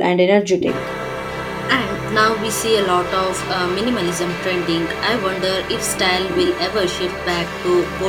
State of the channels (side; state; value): both; identical; correlation 1.00